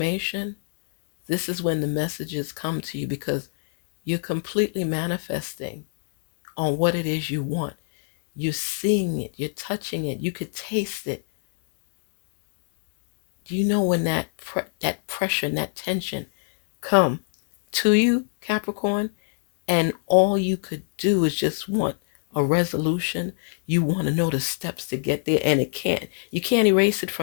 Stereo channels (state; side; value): silent; right; 62 dB below the other